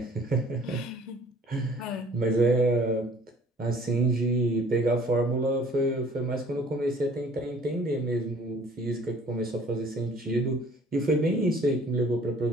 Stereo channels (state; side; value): normal; both; correlation 0.54